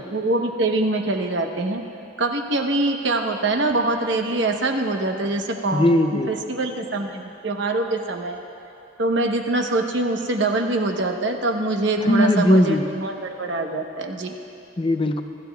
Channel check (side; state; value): both; normal; correlation 0.41